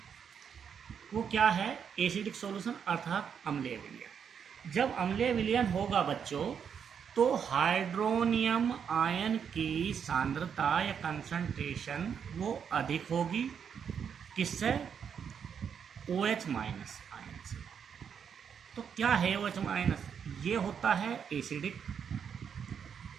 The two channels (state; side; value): quieter; left; 7.4 dB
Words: वो क्या है, एसिडिक सॉल्यूशन अर्थात अम्लीय विलयन। जब अम्लीय विलयन होगा बच्चों तो हाइड्रोनियम आयन की सांद्रता या कंसंट्रेशन वो अधिक होगी, किससे, OH माइनस आयन से। तो क्या है OH माइनस, ये होता है एसिडिक।